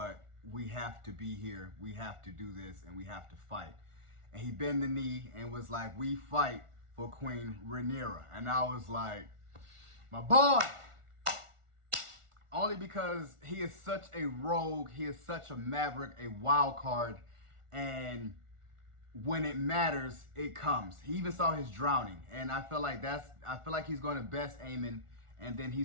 we have to be here. We have to do this, and we have to fight. And he bent the knee and was like, we fight for Queen Rhaenyra. And I was like, my boy! Only because he is such a rogue, he is such a maverick, a wild card, and when it matters, it comes. He even saw his drowning, and I feel like he's going to best Aemon, and then he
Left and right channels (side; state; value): left; late; 1.4 ms